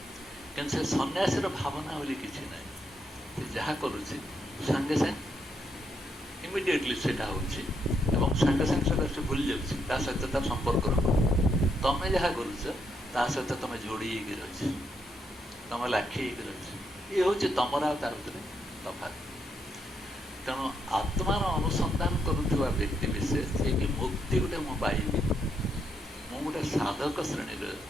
କିନ୍ତୁ ସେ ସନ୍ନ୍ୟାସୀର ଭାବନା ବୋଲି କିଛି ନାହିଁ। ସେ ଯାହା କରୁଛି ସାଙ୍ଗେ ସାଙ୍ଗେ ଇମିଡ଼ିଏଟଲି ସେଇଟା ହେଉଛି ଏବଂ ସାଙ୍ଗେ ସାଙ୍ଗେ ସେଇଟା ସେ ଭୁଲି ଯାଉଛି, ତା ସହିତ ତାର ସମ୍ପର୍କ ରଖୁନି। ତମେ ଯାହା କରୁଛ ତା ସହିତ ତମେ ଯୋଡ଼ି ହେଇକି ରହିଛ, ତମେ ଲାଖି ହେଇକି ରହିଛ। ଇଏ ହେଉଛି ତମର ଆଉ ତାର ଭିତରେ ତଫାତ୍। ତେଣୁ ଆତ୍ମାର ଅନୁସନ୍ଧାନ କରୁଥିବା ବ୍ୟକ୍ତି ବିଶେଷ ଯିଏକି ମୁକ୍ତି ଗୋଟେ ମୁଁ ପାଇବି, ମୁଁ ଗୋଟେ ସାଧକ ଶ୍ରେଣୀରେ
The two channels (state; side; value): normal; both; correlation 0.78